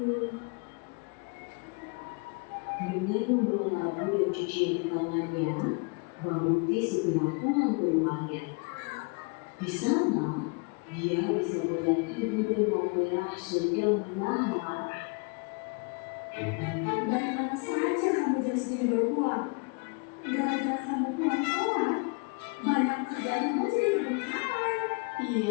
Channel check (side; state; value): right; quieter; 32.6 dB